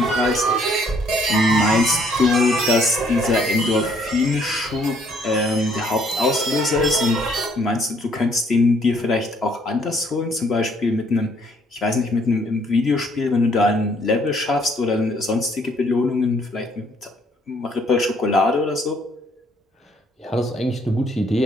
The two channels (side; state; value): both; normal; correlation 0.64